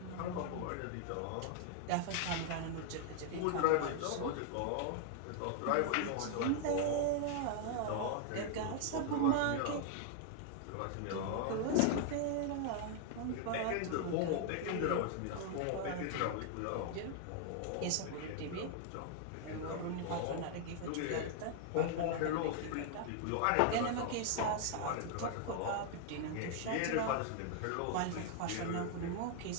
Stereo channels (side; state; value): both; different; correlation 0.00